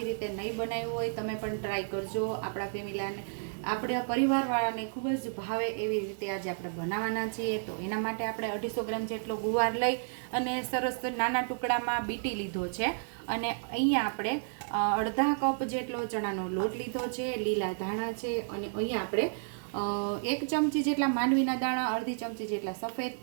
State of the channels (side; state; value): left; silent; 57 dB below the other